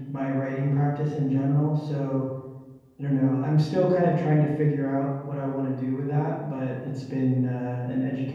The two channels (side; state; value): both; identical; correlation 1.00